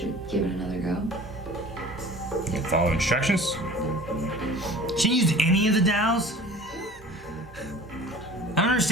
we give it another go? You follow instructions? She didn't use any of the dowels? I don't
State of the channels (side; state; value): both; normal; correlation 0.44